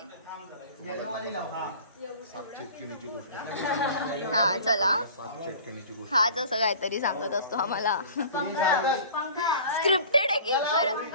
सात चिटकिणीची गोष्ट. हा चला सात चिटकिणीची गोष्ट. हाच असं काहीतरी सांगत असतो आम्हाला. स्क्रिप्टेड आहे की खरं?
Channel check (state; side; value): inverted; both; correlation -0.43